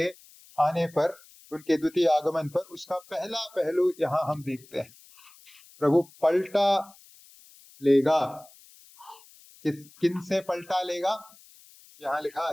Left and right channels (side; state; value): left; noise; hiss, 25 dB below the sound